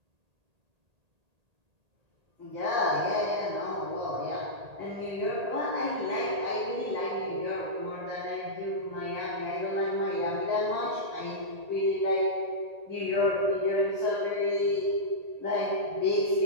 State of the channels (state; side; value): late; left; 1.8 ms